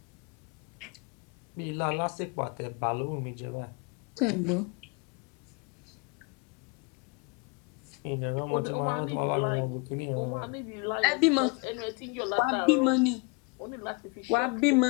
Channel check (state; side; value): quieter; right; 30.2 dB